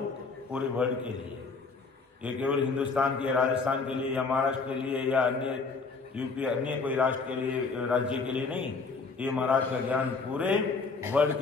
पूरे वर्ल्ड के लिए, ये केवल हिंदुस्तान के, राजस्थान के लिए या महाराष्ट्र के लिए या अन्य यूपी अन्य कोई राष्ट्र के लिए, राज्य के लिए नहीं, ये महाराज का ज्ञान पूरे वर्ल्ड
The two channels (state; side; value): quieter; right; 4.4 dB